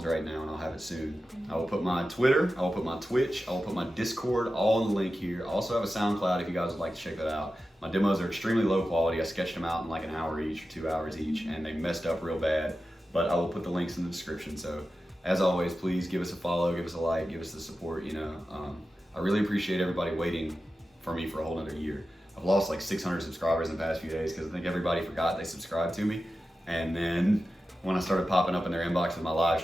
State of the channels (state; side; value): normal; both; correlation 0.93